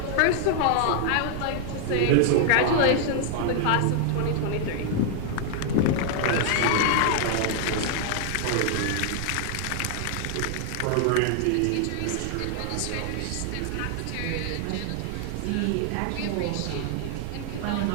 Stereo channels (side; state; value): both; different; correlation 0.00